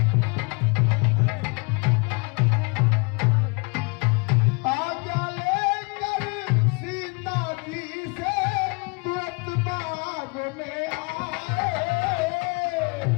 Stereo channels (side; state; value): right; quieter; 30.8 dB